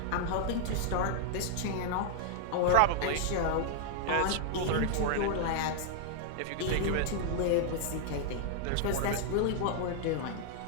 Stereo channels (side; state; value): both; different; correlation 0.00